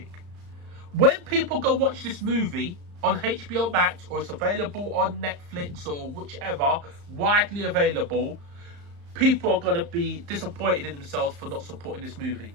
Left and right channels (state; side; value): late; left; 35 ms